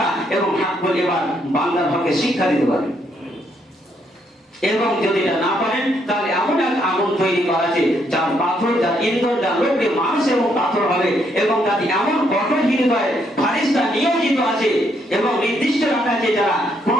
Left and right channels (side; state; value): both; normal; correlation 0.73